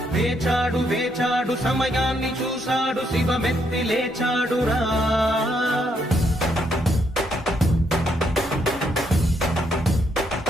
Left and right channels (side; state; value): both; normal; correlation 0.74